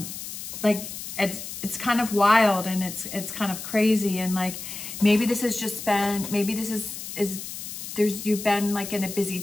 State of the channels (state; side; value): noise; left; hiss, 9 dB below the sound